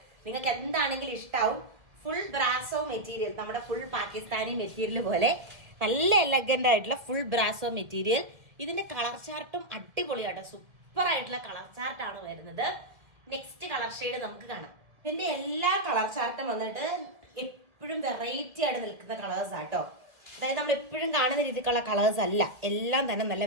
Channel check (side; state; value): left; late; 2.1 ms